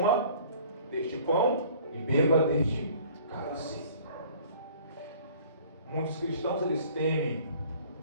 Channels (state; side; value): inverted; both; correlation -0.51